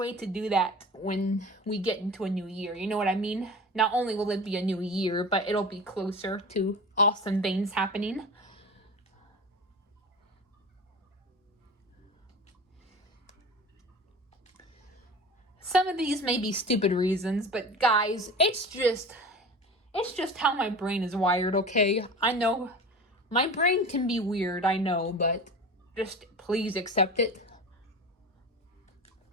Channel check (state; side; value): normal; both; correlation 0.33